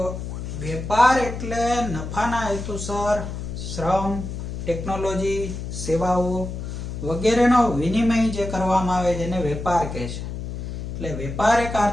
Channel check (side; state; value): left; noise; hum, 6 dB below the sound